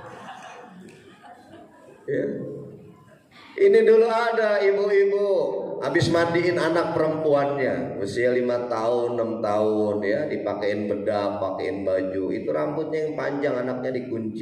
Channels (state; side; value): identical; both; correlation 1.00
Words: Ya. Ini dulu ada ibu-ibu habis mandiin anak perempuannya usia 5 tahun 6 tahun, ya, dipakein bedak, pakein baju, itu rambutnya yang panjang, anaknya